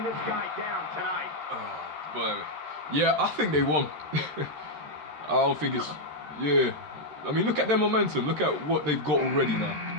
this guy down tonight. Oh, boy. Yeah, I think they won. I don't think it's... yeah. I mean, look at their momentum. Look at what they've got already now.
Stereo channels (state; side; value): late; left; 13 ms